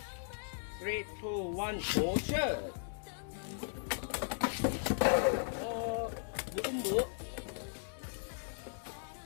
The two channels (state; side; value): silent; right; digital silence